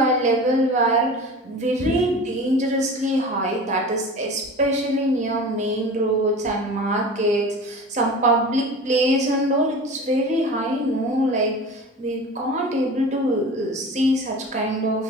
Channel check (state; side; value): normal; both; correlation 0.36